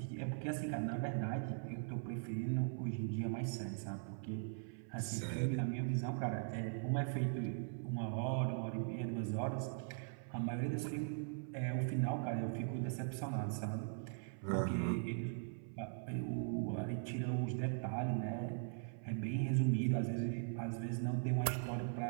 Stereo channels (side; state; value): left; silent; 51 dB below the other